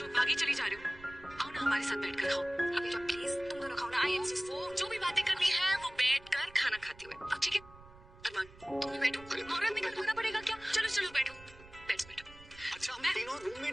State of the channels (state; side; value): noise; right; rumble, 21 dB below the sound